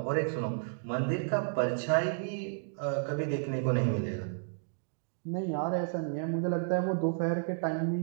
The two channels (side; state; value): left; silent; digital silence